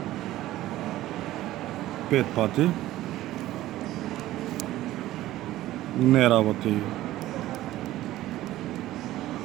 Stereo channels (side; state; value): left; quieter; 15.2 dB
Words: 5 пати. Не работи.